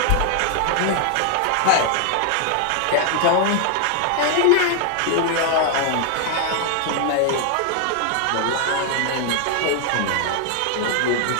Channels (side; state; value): both; different; correlation 0.00